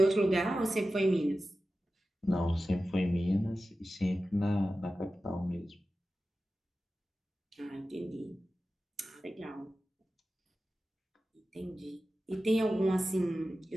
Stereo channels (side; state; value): both; normal; correlation 0.94